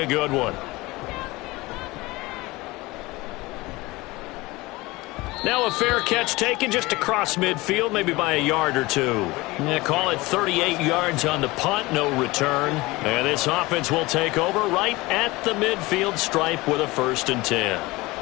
a good one. Now a fair catch taken just across midfield, maybe by a yard or 2. Yeah, call it 38 yards on the punt, no return. And this offense will take over right at the midfield stripe with a 1st and 10.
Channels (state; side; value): quieter; right; 21.4 dB